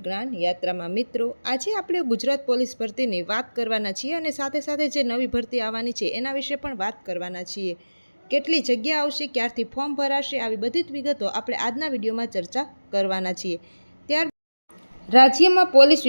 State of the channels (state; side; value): inverted; both; correlation -1.00